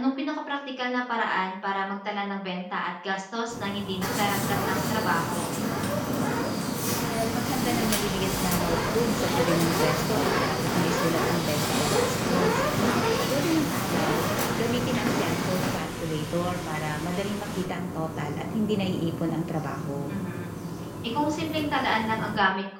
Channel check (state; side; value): identical; both; correlation 1.00